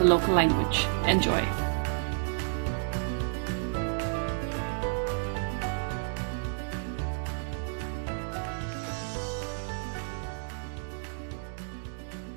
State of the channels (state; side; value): silent; left; digital silence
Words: the local language. Enjoy.